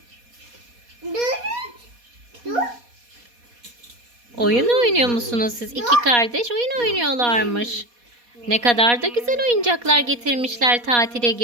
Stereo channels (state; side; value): late; left; 4.2 ms